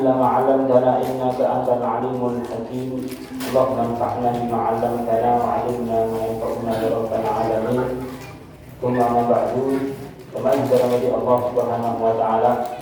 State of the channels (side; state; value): both; identical; correlation 1.00